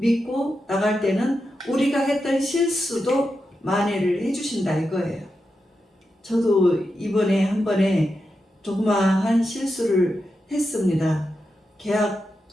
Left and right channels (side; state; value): both; normal; correlation 0.88